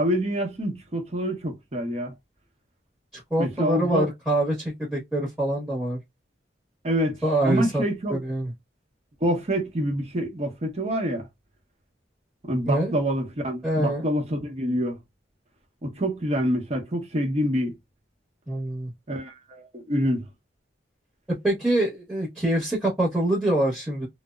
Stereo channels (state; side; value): normal; both; correlation 0.64